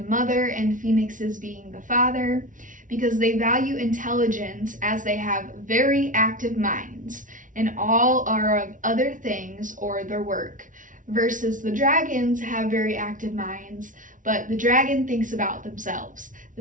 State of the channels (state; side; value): late; left; 0.38 ms